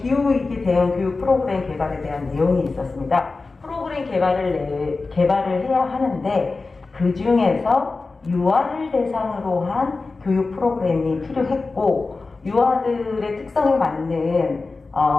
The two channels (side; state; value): right; quieter; 3.8 dB